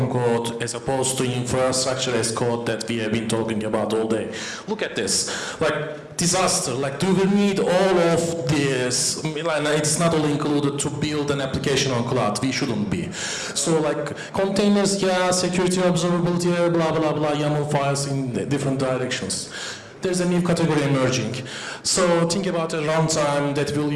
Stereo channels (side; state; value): both; identical; correlation 1.00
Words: code as opposed to infrastructure as code that we have been talking about all day. Look at this, like disaster, like do we need all of this? It's not all included to build an application on cloud, we shouldn't be. So like containers, yeah, security, observability, blah, blah, blah, YAML files in different directions. There's a new category emerging. So think about a runtime that will